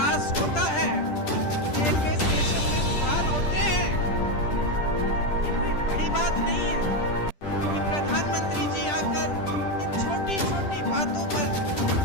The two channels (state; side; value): late; right; 10 ms